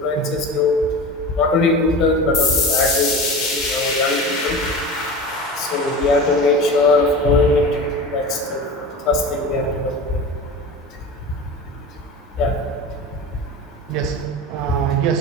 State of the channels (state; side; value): normal; both; correlation 0.31